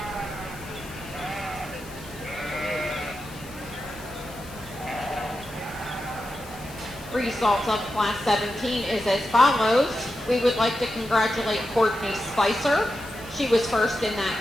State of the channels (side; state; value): left; noise; hiss, 19 dB below the sound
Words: Results of Class 17 is as follows. We would like to congratulate Courtney Spicer. She was first in